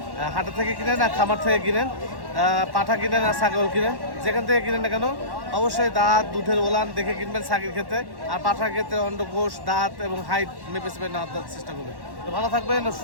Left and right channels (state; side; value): late; left; 1.1 ms